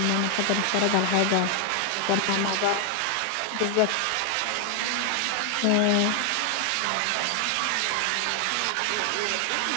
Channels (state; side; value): different; both; correlation 0.00